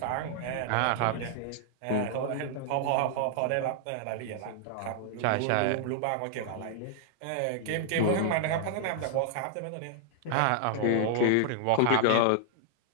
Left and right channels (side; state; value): both; different; correlation 0.00